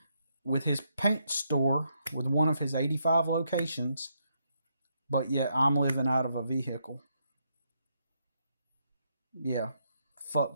with his paint store with one of his 85 locations. But yet I'm living out of a vehicle. Yeah,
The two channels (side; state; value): both; inverted; correlation -0.78